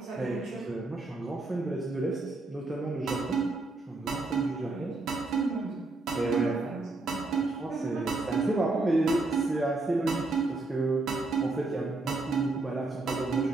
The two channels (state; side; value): quieter; left; 3.1 dB